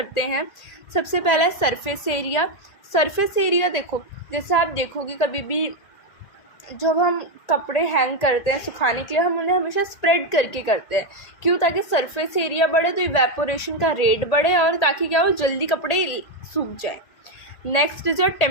हैं। सबसे पहला है सरफेस एरिया। सरफेस एरिया देखो, जैसे आप देखोगे कभी भी जब हम कपड़े हैंग करते हैं सुखाने के लिए, हम उन्हें हमेशा स्प्रेड करके करते हैं। क्यों? ताकि सरफेस एरिया बढ़े, तो इवेपोरेशन का रेट बढ़े, और ताकि क्या हो, जल्दी कपड़े सूख जाए। Next is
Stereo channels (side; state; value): right; late; 1.8 ms